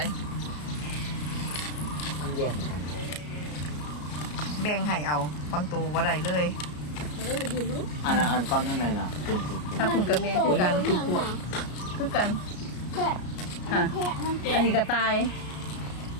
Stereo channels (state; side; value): late; right; 33 ms